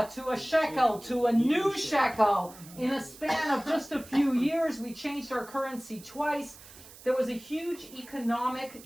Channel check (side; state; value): right; noise; hiss, 19 dB below the sound